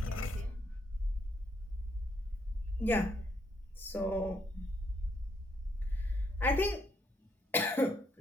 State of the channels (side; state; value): both; normal; correlation 0.74